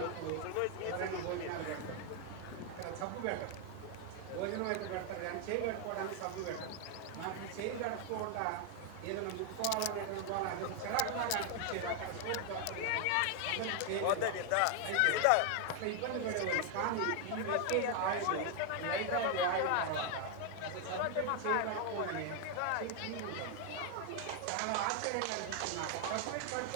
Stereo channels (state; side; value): different; both; correlation 0.00